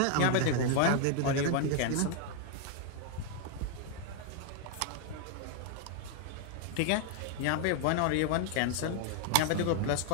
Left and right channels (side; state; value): both; different; correlation 0.00